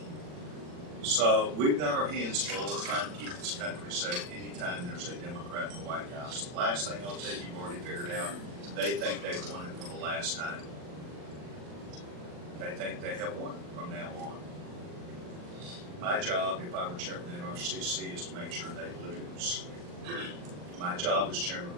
So we've got our hands full of trying to keep this country safe anytime there's a Democrat in the White House. The last thing I'll tell you, you've already figured out, they think they've won it for the last time. They think they have won from now on. My job, if I were chairman of the NRCC, is to make sure they lose. My job as chairman of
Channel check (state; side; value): late; left; 40 ms